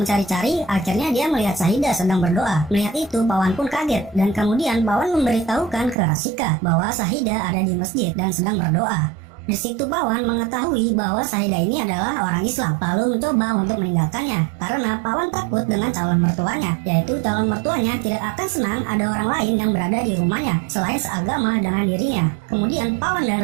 akhirnya dia melihat Syahidah sedang berdoa. Melihat itu, Pawan pun kaget dan kemudian Pawan memberitahukan ke Rasika bahwa Syahidah ada di masjid dan sedang berdoa. Di situ Pawan mengetahui bahwa Syahidah ini adalah orang Islam, lalu mencoba untuk meninggalkannya karena Pawan takut dengan calon mertuanya, yaitu calon mertuanya tidak akan senang ada orang lain yang berada di rumahnya selain seagama dengan dirinya. Kemudian Pawan dan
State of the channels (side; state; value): left; drops out; at 6.0 s